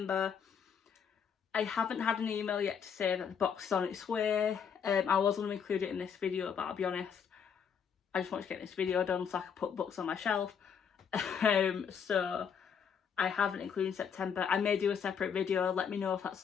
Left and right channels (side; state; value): right; quieter; 7.2 dB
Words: I haven't had an email yet to say that the box is on its way. I was going to include it in this video, but I'll be honest, I just want to get this video done so I can put books on my shelf. So I haven't included September. I may do a separate video. Let me know if that's